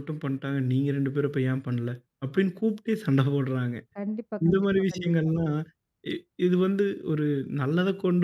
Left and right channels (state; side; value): identical; both; correlation 1.00